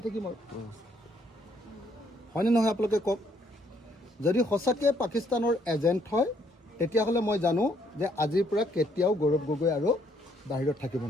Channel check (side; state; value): both; normal; correlation 0.69